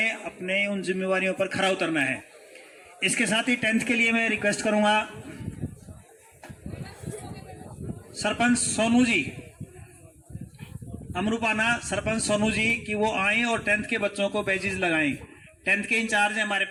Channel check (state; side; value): identical; both; correlation 1.00